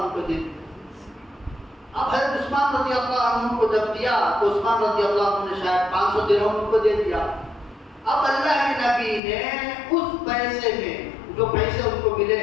کو دے دیا۔ اب حضرت عثمان رضی اللہ عنہ کو جب دیا تو عثمان رضی اللہ عنہ نے شاید 500 درہم کو دے دیا۔ اب اللہ کے نبی نے اس پیسے میں، جو پیسے ان کو ملے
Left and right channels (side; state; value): right; drops out; at 9.2 s